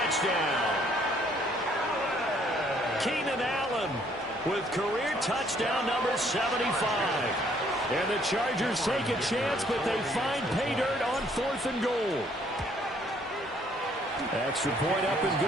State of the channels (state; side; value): normal; both; correlation 0.64